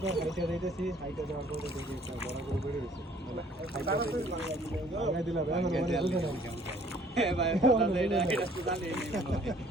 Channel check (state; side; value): normal; both; correlation 0.58